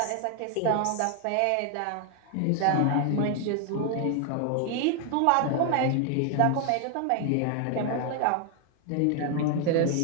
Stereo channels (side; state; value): both; different; correlation 0.01